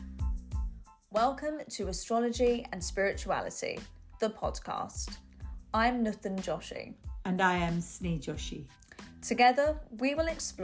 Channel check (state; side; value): identical; both; correlation 1.00